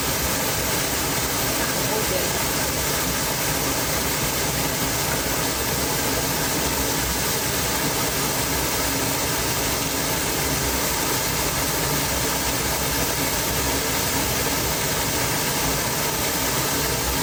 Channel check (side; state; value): both; identical; correlation 1.00